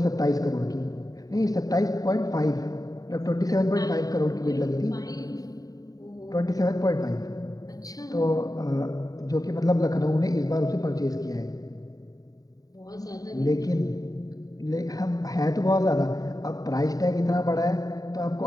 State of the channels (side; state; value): right; late; 0.18 ms